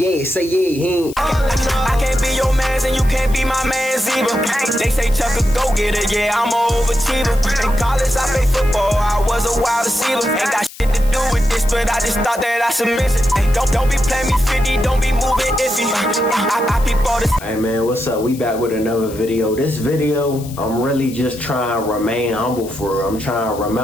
say yeah, he ain't. I can't be your mans and you can't be my mans either. They say Chuck a go-getter, yeah, I'm a overachiever. In college I played football, I was a wide receiver. Ain't got shit to do with this, but I just thought that I submit it. Don't be playing me 50, don't be moving iffy. I peep all this. Hey man, what's up? We back with another video. This video, I'm really just trying to remain humble for real. I'm trying to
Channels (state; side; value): noise; left; hiss, 18 dB below the sound